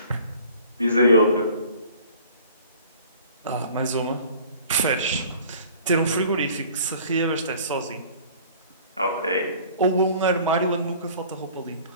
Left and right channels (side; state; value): both; inverted; correlation -0.49